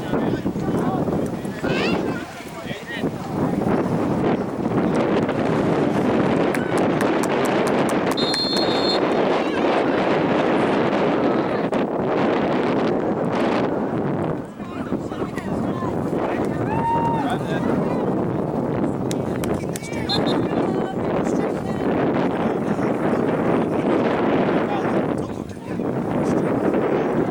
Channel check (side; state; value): both; identical; correlation 1.00